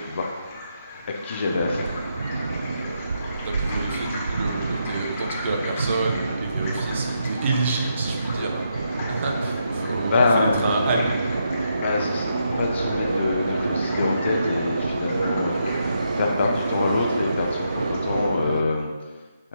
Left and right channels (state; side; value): inverted; both; correlation -0.80